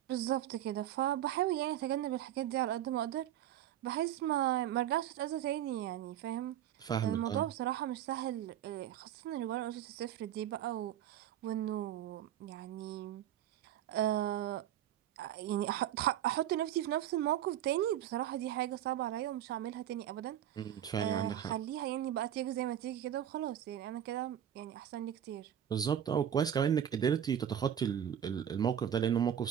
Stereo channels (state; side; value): quieter; left; 10.6 dB